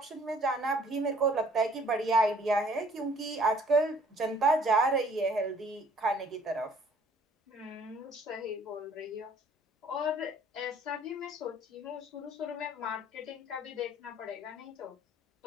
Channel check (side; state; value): both; normal; correlation 0.57